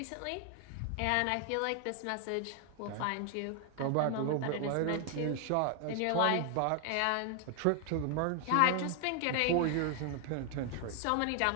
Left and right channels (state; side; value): different; both; correlation 0.00